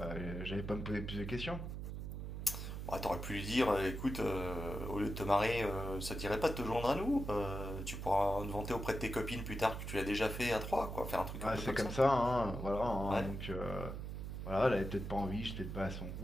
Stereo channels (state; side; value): noise; right; hum, 6 dB below the sound